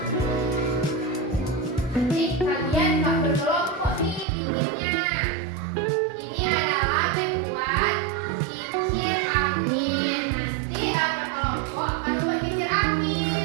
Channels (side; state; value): left; drops out; at 4.2 s